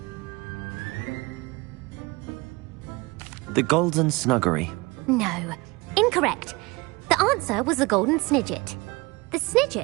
The Golden Snuggery. No. Incorrect. The answer was the golden snidget. The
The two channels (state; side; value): quieter; left; 24.5 dB